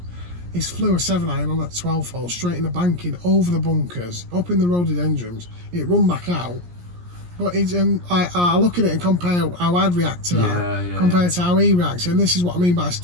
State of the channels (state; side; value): late; left; 17 ms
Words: He's flew a 7-iron on that 12th hole, straight in the banking, over the bunkers, up in the rhododendrons. It run back out. But I look at it and compare how I'd react to that compared to how he reacts. And this is what I mean by